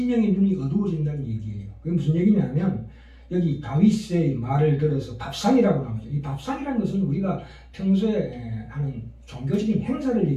눈이 어두워진다는 얘기예요. 그게 무슨 얘기냐면 여기 다윗의 말을 들어서 밥상이라고 나오죠. 이 밥상이라는 것은 우리가 평소에 하는 종교적인 행사를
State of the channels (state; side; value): identical; both; correlation 1.00